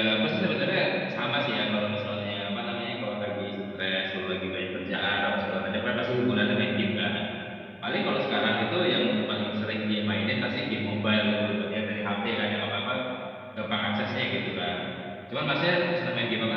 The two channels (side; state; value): both; identical; correlation 1.00